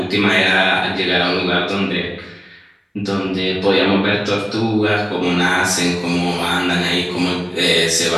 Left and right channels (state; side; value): identical; both; correlation 1.00